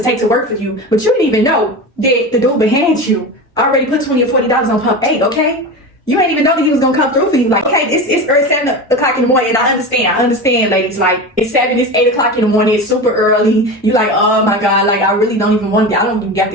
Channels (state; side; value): normal; both; correlation 0.26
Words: take to work for you, but you didn't even know that the dude behind you already put $20 or $40 on pump 8, okay? You ain't even know that he was gonna come through for you. Like, okay, it's early 7 o'clock in the morning, and I understand, ladies. Like, it's 7, it's 8 o'clock in the morning, it's super early. You like, oh my God, like I really don't even want. I don't even got